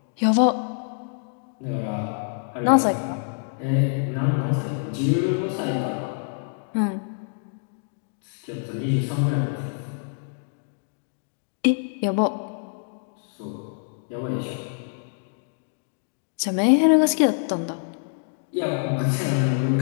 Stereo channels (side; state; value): right; silent; digital silence